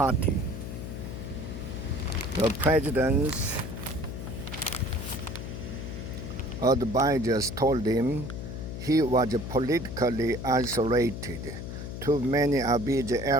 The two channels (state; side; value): noise; left; hum, 7 dB below the sound